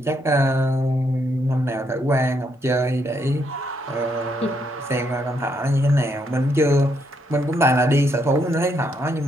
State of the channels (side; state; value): both; normal; correlation 0.75